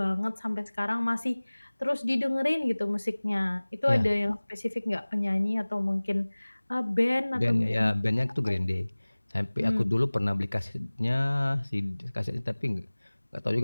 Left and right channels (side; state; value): both; inverted; correlation -1.00